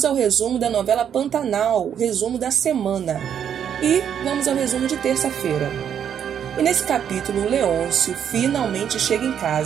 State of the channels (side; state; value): left; quieter; 8.7 dB